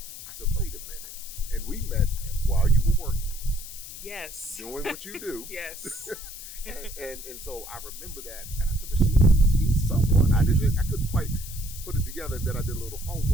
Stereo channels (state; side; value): noise; left; hiss, 12 dB below the sound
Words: I said, wait a minute. And we met while you were working. Yes. Doing what you do. Yes. and so I remember that, and I said, but she's someone. I couldn't quite put it together. And then I did a little